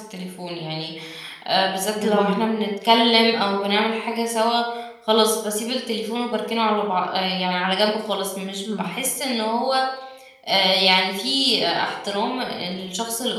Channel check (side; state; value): both; identical; correlation 1.00